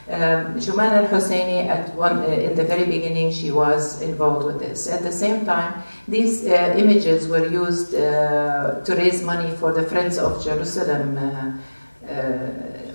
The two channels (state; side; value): inverted; both; correlation -1.00